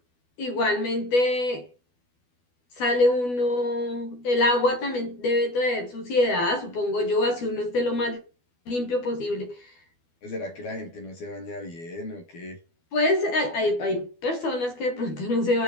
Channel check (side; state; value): right; late; 12 ms